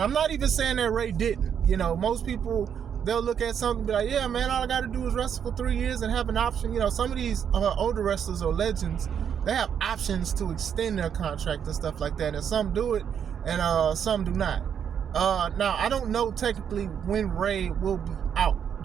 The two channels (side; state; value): left; quieter; 8.2 dB